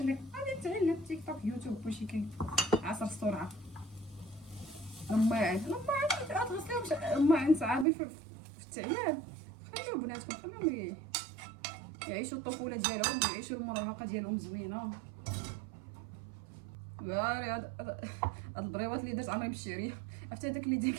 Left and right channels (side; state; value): left; drops out; at 7.9 s